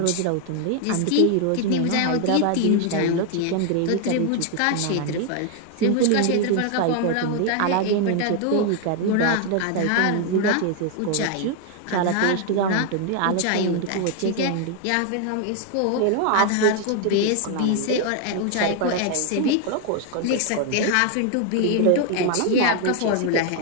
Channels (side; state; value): both; different; correlation 0.00